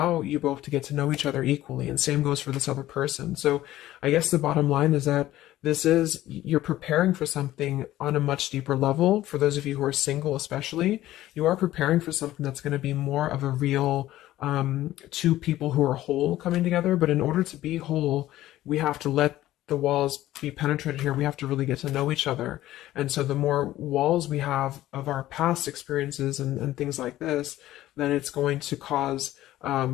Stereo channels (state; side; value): quieter; right; 14.7 dB